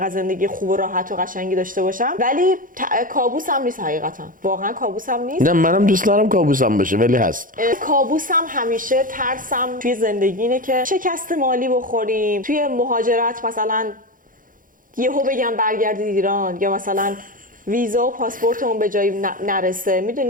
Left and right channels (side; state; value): left; late; 0.40 ms